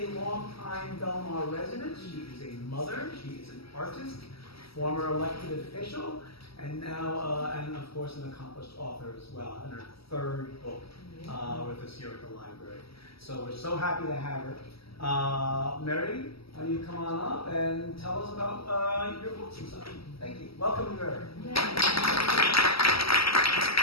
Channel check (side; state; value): right; late; 0.75 ms